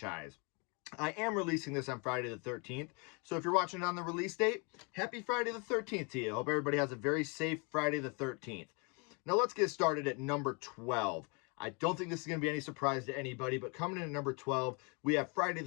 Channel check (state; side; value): quieter; right; 32.6 dB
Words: I am releasing this on Friday the 13th, so if you're watching it on the release date, happy Friday the 13th to you. Hope everybody has a very safe Friday the 13th. Now, let's get started at number 12. I don't think this is going to be any surprise to anybody, but coming in at number 12, we have Friday